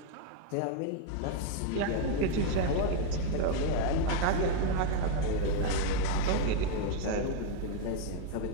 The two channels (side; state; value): both; different; correlation 0.00